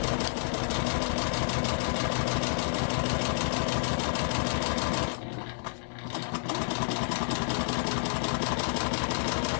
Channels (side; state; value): right; silent; digital silence